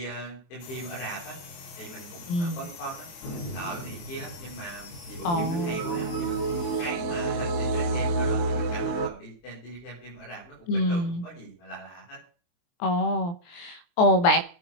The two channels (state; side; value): late; right; 23 ms